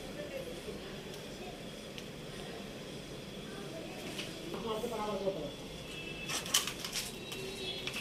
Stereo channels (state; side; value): identical; both; correlation 1.00